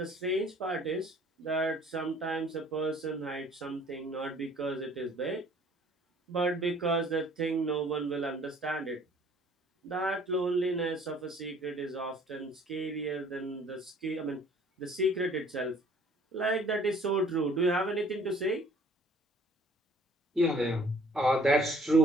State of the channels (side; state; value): both; normal; correlation 0.56